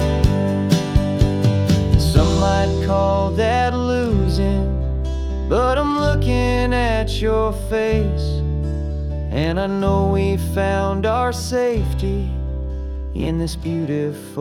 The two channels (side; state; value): both; identical; correlation 1.00